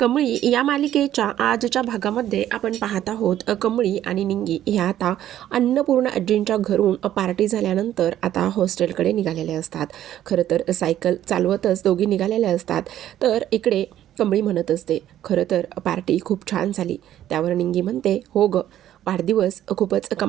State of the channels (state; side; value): quieter; left; 12.0 dB